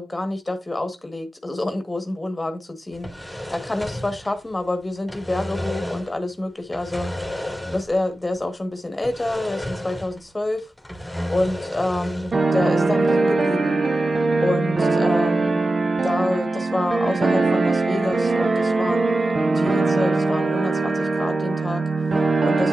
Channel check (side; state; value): both; normal; correlation 0.93